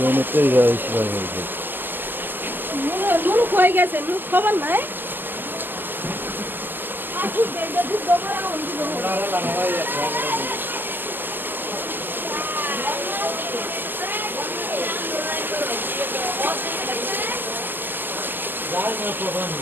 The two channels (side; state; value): left; late; 0.091 ms